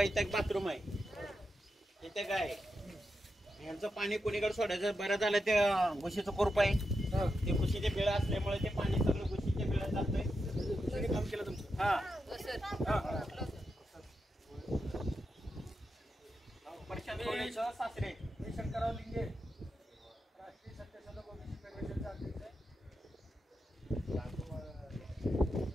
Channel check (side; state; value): both; normal; correlation 0.87